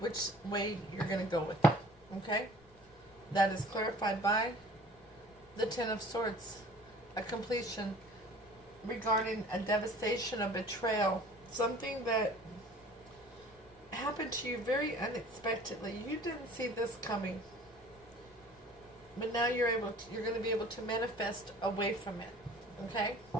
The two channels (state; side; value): noise; left; rumble, 26 dB below the sound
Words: way you're going to go with it. Okay? That is clarified by the 10 of Swords. A completion regarding a devastation, a betrayal. Something that happened to you very unexpectedly. You didn't see this coming. But now you're going to be able to manifest away from it. Okay?